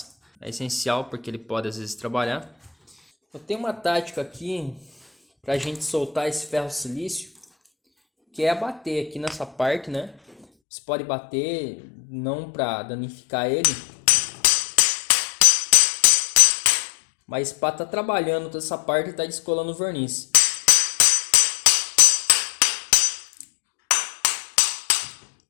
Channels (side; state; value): right; drops out; at 10.5 s